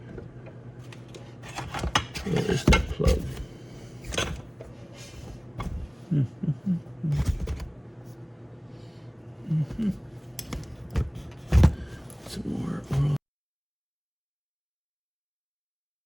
where is that plug? Some more oil.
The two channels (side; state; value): both; identical; correlation 1.00